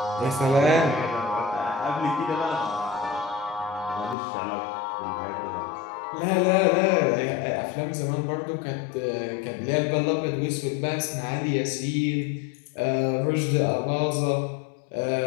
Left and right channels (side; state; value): right; drops out; at 4.2 s